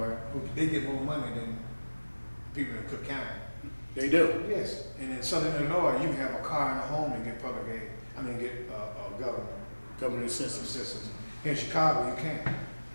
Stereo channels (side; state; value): both; inverted; correlation -1.00